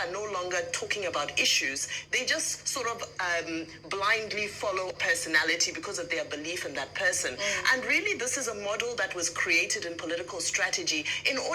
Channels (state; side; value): identical; both; correlation 1.00